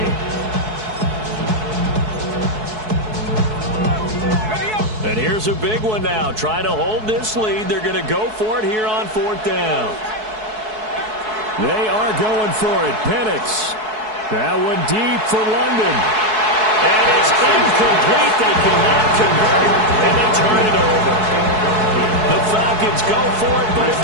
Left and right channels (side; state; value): left; late; 4.7 ms